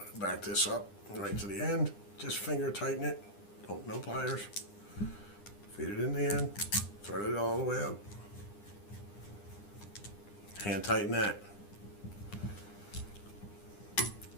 Back this up right to the end. Just finger tighten it. No pliers. Feed it in the end. Thread it all the way up. Hand tighten that.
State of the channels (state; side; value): late; right; 9.9 ms